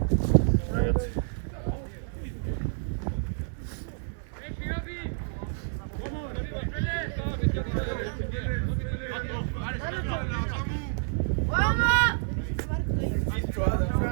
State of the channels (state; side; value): silent; left; digital silence